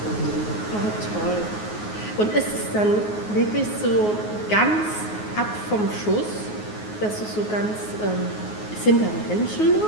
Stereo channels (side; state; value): right; late; 9.5 ms